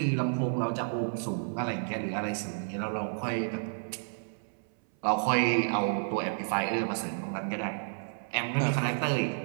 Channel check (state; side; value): silent; left; 57 dB below the other